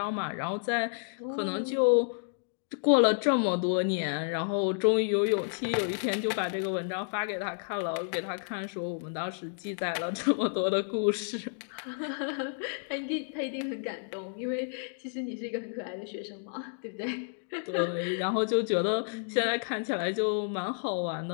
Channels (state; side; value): silent; right; digital silence